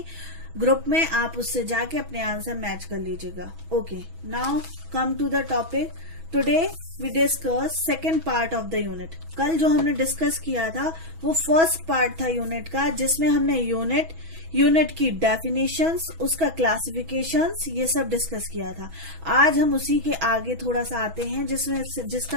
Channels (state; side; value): late; left; 6.1 ms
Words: ग्रुप में, आप उससे जाके अपने आंसर मैच कर लीजिएगा। Okay, now come to the topic. Today we discuss second part of the unit. कल जो हमने डिस्कस किया था वो फर्स्ट पार्ट था यूनिट का, जिसमें हमने यूनिट की डेफिनेशंस, उसका क्लासिफिकेशंस, ये सब डिस्कस किया था। आज हम उसी के आगे थोड़ा सा आते हैं,